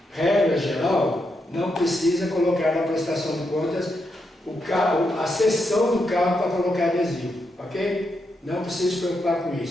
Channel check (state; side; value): normal; both; correlation 0.83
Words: regra geral, não precisa colocar na prestação de contas o carro, a seção do carro para colocar adesivo, ok? Não precisa se preocupar com